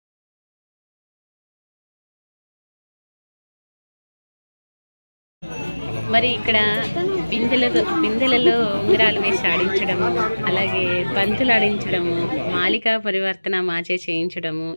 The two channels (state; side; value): inverted; both; correlation -1.00